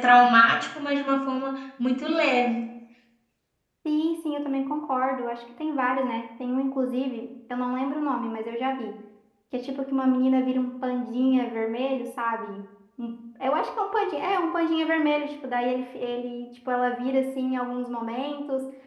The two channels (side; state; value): both; identical; correlation 1.00